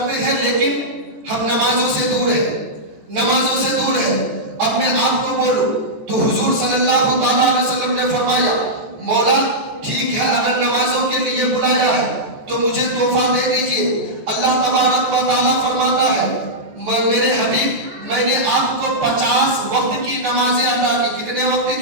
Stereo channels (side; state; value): left; late; 14 ms